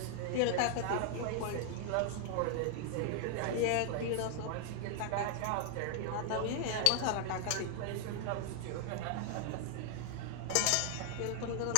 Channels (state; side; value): different; both; correlation 0.00